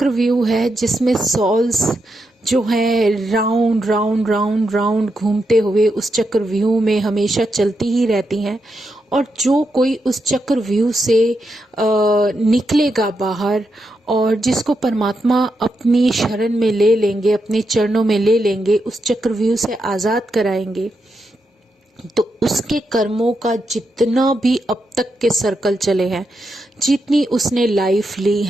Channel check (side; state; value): both; normal; correlation 0.84